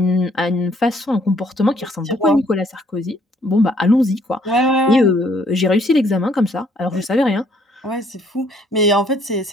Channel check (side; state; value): both; normal; correlation 0.64